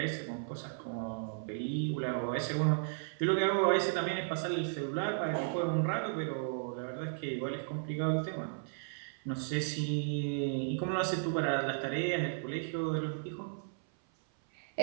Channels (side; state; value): left; silent; 55 dB below the other